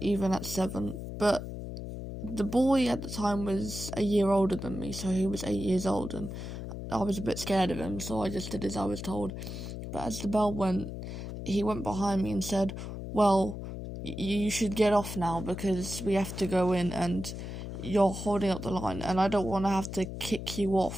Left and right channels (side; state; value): left; noise; hum, 7 dB below the sound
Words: even at 7. But the boy at the time was a year older than me, so he was 8 years old, and I was a bit scared of him, so I just did as I was told. But as the bell went, he went behind me and said, "Well, you should get off now because we have to go in and you're holding up the line, and I don't want to have to kick you